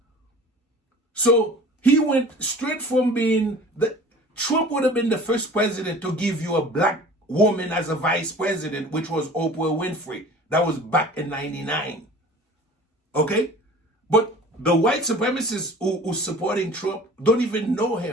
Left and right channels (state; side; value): normal; both; correlation 0.44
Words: So he went straight from being Trump would have been the first president to give you a black woman as a vice president, which was Oprah Winfrey. That was back in 99. Okay? But the white supremacists who supporting Trump don't even know